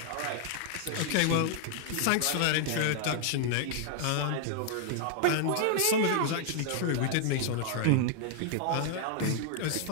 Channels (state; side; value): different; both; correlation 0.00